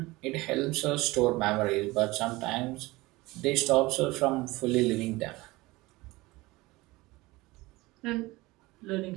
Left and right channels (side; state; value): left; quieter; 21.0 dB